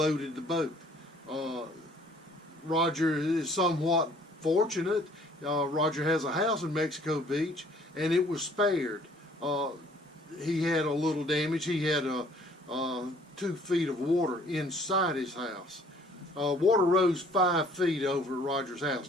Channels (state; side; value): normal; both; correlation 0.57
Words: the boat. Roger is somewhat fortunate. Roger has a house in Mexico Beach, and it was spared. He had a little damage. He had 2 feet of water inside his house. Water rose 5 feet over Roger's house